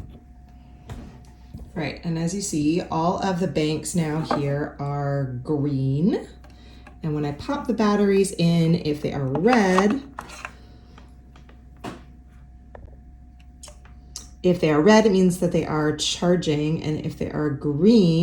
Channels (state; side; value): identical; both; correlation 1.00